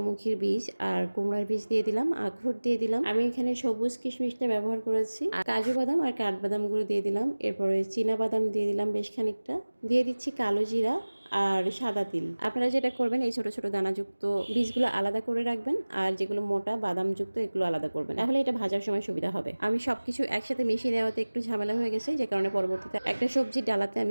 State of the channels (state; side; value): inverted; both; correlation -1.00